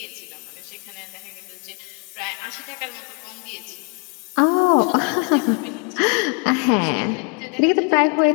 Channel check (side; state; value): right; quieter; 34.1 dB